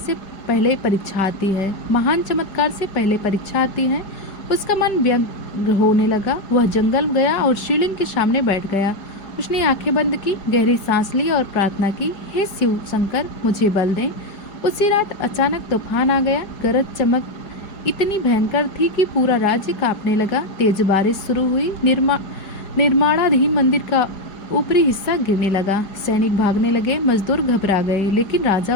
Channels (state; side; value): late; right; 4.8 ms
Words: पहले परीक्षा आती है, महान चमत्कार से पहले परीक्षा आती है। उसका मन व्यग्र होने लगा। वह जंगल गया और शिवलिंग के सामने बैठ गया। उसने आंखें बंद की, गहरी सांस ली और प्रार्थना की, हे शिव शंकर, मुझे बल दें। उसी रात अचानक तूफान आ गया। गरज चमक इतनी भयंकर थी कि पूरा राज्य कांपने लगा। तेज बारिश शुरू हुई। निर्माणाधीन मंदिर का ऊपरी हिस्सा गिरने लगा। सैनिक भागने लगे, मजदूर घबरा गए, लेकिन राजा